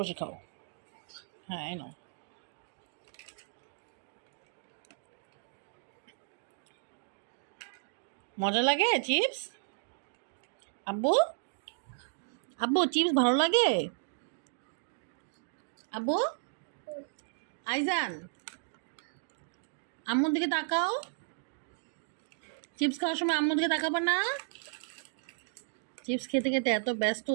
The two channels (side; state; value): left; silent; digital silence